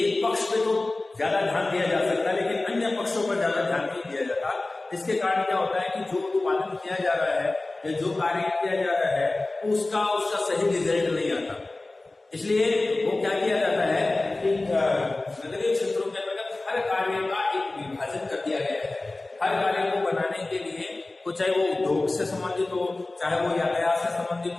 एक पक्ष पे तो ज्यादा ध्यान दिया जा सकता है लेकिन अन्य पक्षों पर ज्यादा ध्यान नहीं दिया जाता। इसके कारण क्या होता है कि जो उत्पादन किया जा रहा है या जो कार्य किया जा रहा है उसका सही रिजल्ट नहीं आता। इसलिए वो क्या किया जाता है कि नगरीय क्षेत्रों के अंतर्गत हर कार्य का एक विभाजन कर दिया गया है। हर कार्य को बनाने के लिए, चाहे वो उद्योग से संबंधित हो, चाहे वो यातायात से संबंधित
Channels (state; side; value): quieter; right; 3.0 dB